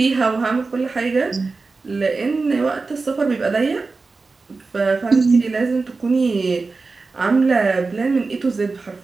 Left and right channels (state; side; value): quieter; left; 4.0 dB